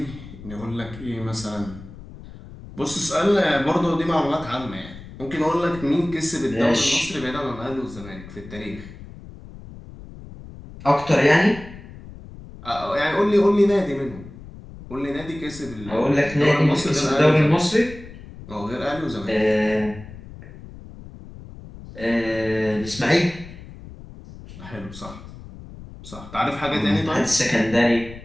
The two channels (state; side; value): noise; left; rumble, 16 dB below the sound